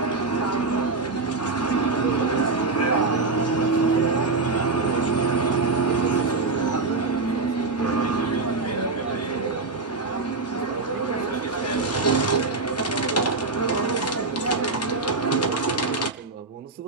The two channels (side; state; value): left; quieter; 3.7 dB